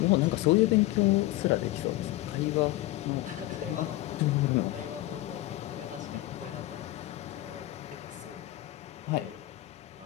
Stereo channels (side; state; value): right; quieter; 16.8 dB